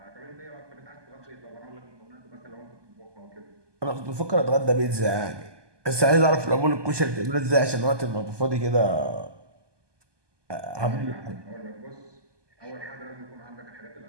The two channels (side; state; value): left; late; 1.2 ms